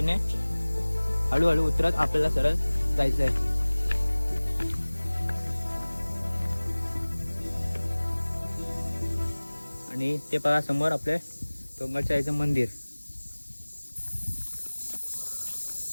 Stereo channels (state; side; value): inverted; both; correlation -1.00